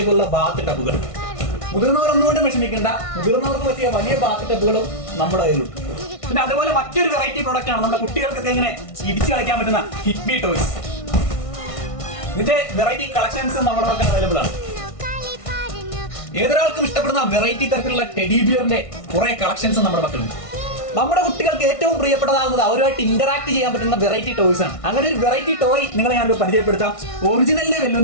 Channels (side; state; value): right; late; 1.6 ms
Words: ബാത്ത് ടബുകൾ. മുതിർന്നവർ ഒന്നുകൊണ്ടും വിഷമിക്കേണ്ട, മുതിർന്നവർക്ക് പറ്റിയ വലിയ ബാത്ത് ടബുകളും നമ്മുടെ കയ്യിലുണ്ട്. പിന്നെ അതുപോലെ മറ്റൊരു വെറൈറ്റി പ്രോഡക്റ്റ് ആണ് നമ്മുടെ കുട്ടികൾക്കൊക്കെ ഇങ്ങനെ ഇടിച്ചു കളിക്കാൻ പറ്റുന്ന ഹിറ്റ്മി ടോയ്സ്. ഇതിന്റെ വെറൈറ്റി കളക്ഷൻസ് നമ്മുടെ പക്കൽ അവൈലബിൾ ആണ്. ഏതൊരാൾക്കും ഇഷ്ടപ്പെടുന്ന വെറൈറ്റി തരത്തിലുള്ള ടെഡി ബിയറിന്റെ കുറെ കളക്ഷൻസ് നമ്മുടെ പക്കലുണ്ട്. നമ്മുടെ കുട്ടികൾക്ക് ഏറ്റവും പ്രിയപ്പെട്ടതാകുന്നത് അവരുമായിട്ട് ഇന്ററാക്ട് ചെയ്യാൻ പറ്റുന്ന വെറൈറ്റി ടോയ്സ് ആണ്. അങ്ങനെ ഒരു വെറൈറ്റി ടോയ് നിങ്ങളെ ഞാനൊരു പരിചയപ്പെടുത്താം. ഒറിജിനലിനെ